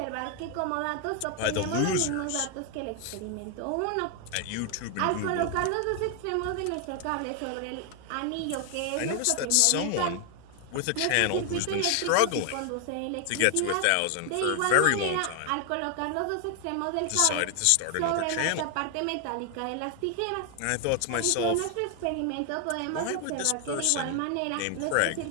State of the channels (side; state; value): both; different; correlation 0.00